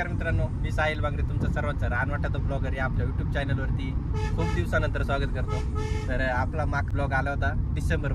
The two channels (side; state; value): both; identical; correlation 1.00